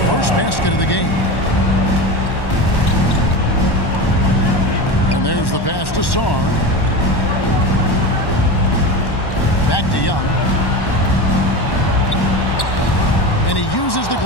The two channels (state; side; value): late; right; 1.1 ms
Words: first basket of the game. And there's the pass to Sarr. Back to Young. And he uses the